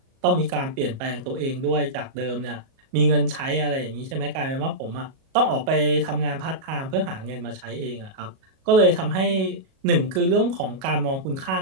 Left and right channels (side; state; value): left; late; 37 ms